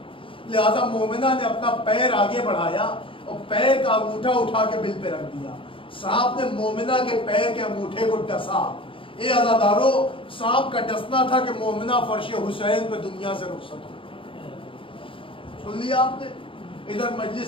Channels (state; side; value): late; right; 0.25 ms